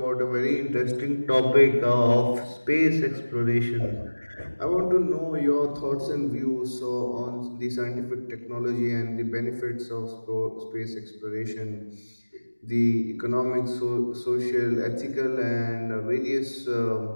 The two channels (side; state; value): both; inverted; correlation -1.00